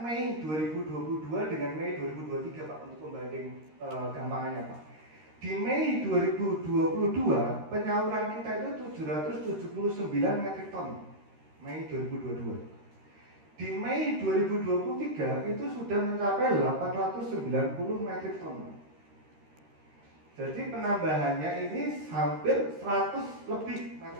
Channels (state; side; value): late; left; 13 ms